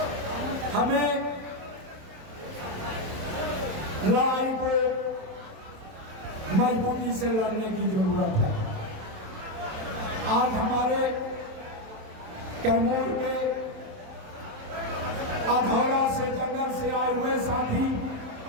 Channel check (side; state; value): left; late; 27 ms